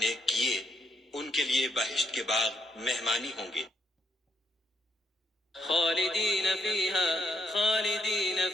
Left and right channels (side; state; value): both; normal; correlation 0.77